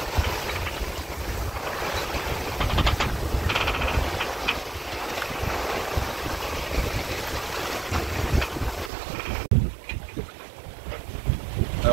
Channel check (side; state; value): left; drops out; at 8.9 s